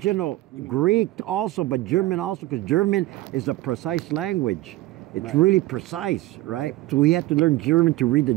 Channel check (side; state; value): left; quieter; 17.3 dB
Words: Greek also, but German also, because German is a precise language. It's really precise, right? So he had to learn German to read the